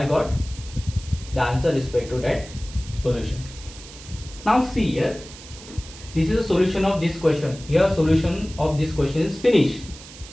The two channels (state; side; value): noise; right; hiss, 17 dB below the sound